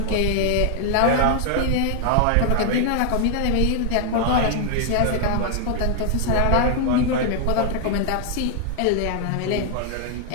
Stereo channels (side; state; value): both; different; correlation 0.00